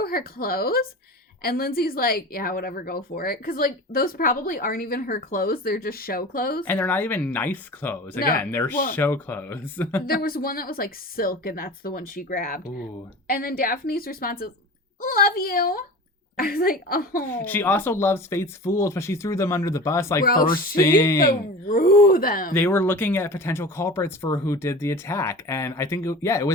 her clothes. And Lindsay's like, yeah, whatever, go for it. Because, like, those probably aren't even her clothes. They're just show clothes. And they're not even nice clothes. Again, they're show clothes. There was one that was, like, silk, and that's the one she grabbed. Ooh. And then Daphne's response is, love you. I was like, oh. She also loves Fate's Fools, but she threw them under the bus, like, first thing. She threw them. They were looking at potential culprits for who did the attack. And I think, it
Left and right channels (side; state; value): both; normal; correlation 0.35